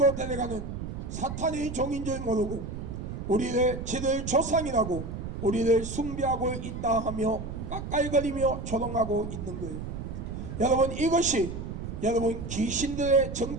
데려가는 사탄의 종인 줄 모르고 저들 조상이라고 우리를 숭배하고 있다 하며 깎아이거리며 조롱하고 있는 거예요. 여러분, 이것이 여러분 귀신들의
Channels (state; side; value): noise; right; rumble, 7 dB below the sound